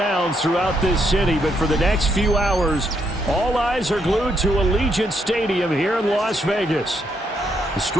throughout this city, but for the next few hours, all eyes are glued to Allegiant Stadium here in Las Vegas.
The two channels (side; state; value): both; normal; correlation 0.76